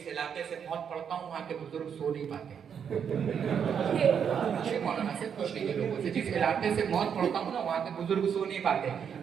علاقے سے موت پڑھتا ہوں وہاں کے بزرگ سو نہیں پاتے مولانا سے پوچھ لیجیے لوگوں سے جس علاقے سے موت پڑھتا ہوں نا وہاں کے بزرگ سو نہیں پاتے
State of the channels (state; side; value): quieter; left; 7.6 dB